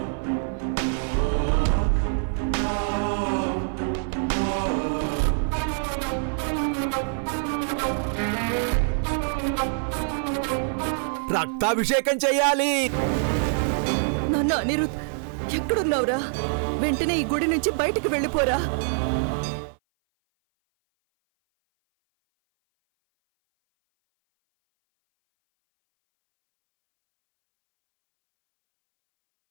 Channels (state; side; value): silent; left; 58 dB below the other